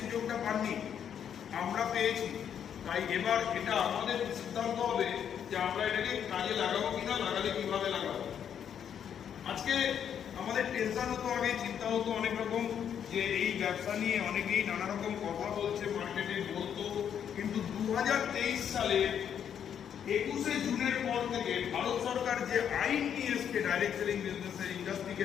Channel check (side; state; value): right; quieter; 8.6 dB